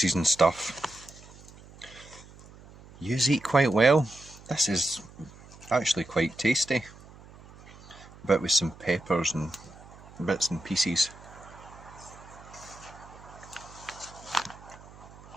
and stuff, yous eat quite well. This is actually quite tasty. A bit with some peppers and bits and pieces.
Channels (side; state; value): right; noise; hum, 20 dB below the sound